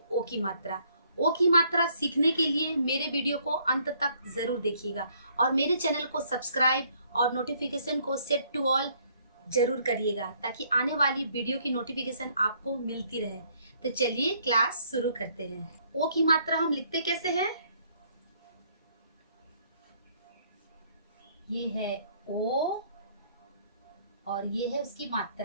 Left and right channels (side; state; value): both; inverted; correlation -0.66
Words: ओ की मात्रा। ओ की मात्रा सीखने के लिए मेरे वीडियो को अंत तक जरूर देखिएगा और मेरे चैनल को सब्सक्राइब और नोटिफिकेशन को सेट टू ऑल जरूर करिएगा ताकि आने वाली वीडियो की नोटिफिकेशन आपको मिलती रहे। तो चलिए क्लास शुरू करते हैं। ओ की मात्रा हम लिखते कैसे हैं? ये है ओ और ये है उसकी